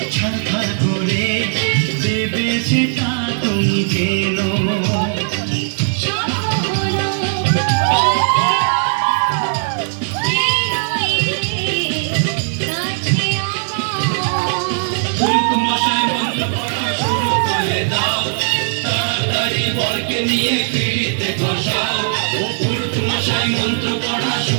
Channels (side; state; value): left; silent; digital silence